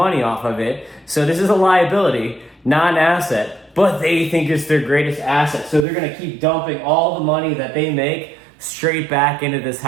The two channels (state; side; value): drops out; left; at 5.9 s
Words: off of it. So this is a liability, not an asset. But they think it's their greatest asset. So they're going to keep dumping all the money that they make straight back into this